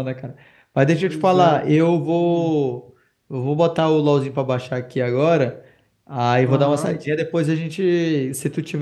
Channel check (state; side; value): identical; both; correlation 1.00